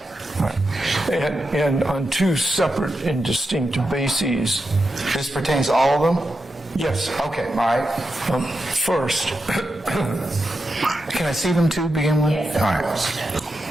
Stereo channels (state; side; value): normal; both; correlation 0.88